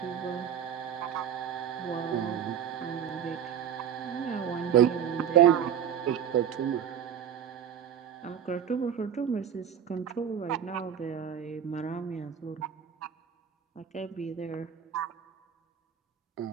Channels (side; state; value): left; quieter; 8.8 dB